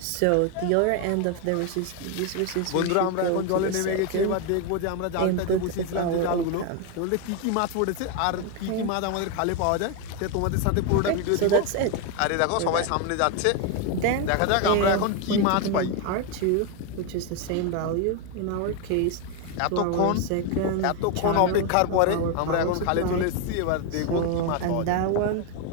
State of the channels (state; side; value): different; both; correlation 0.01